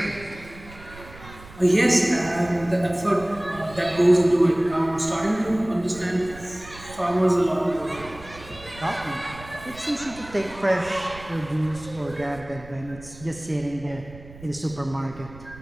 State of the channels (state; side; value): noise; right; rumble, 18 dB below the sound